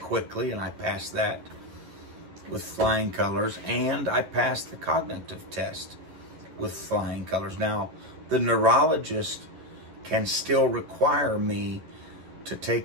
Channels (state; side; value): late; left; 11 ms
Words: and I passed that with flying colors. And I passed the cognitive test with flying colors. Now, the neurologist can still require me to